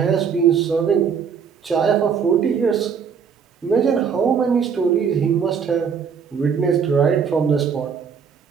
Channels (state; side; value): quieter; left; 6.7 dB